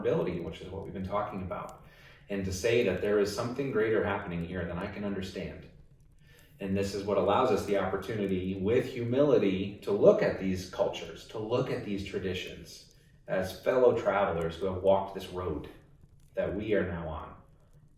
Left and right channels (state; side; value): identical; both; correlation 1.00